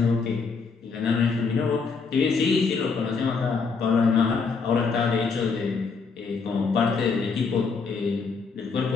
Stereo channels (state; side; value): quieter; right; 5.0 dB